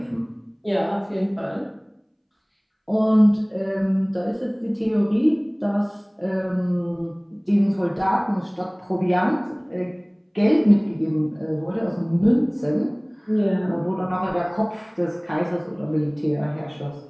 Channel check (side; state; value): both; identical; correlation 1.00